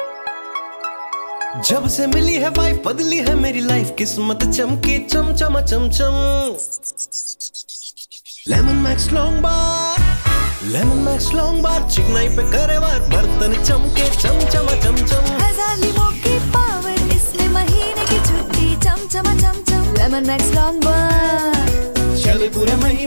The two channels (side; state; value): both; inverted; correlation -1.00